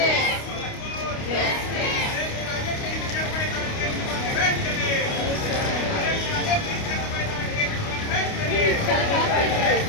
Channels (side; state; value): right; late; 29 ms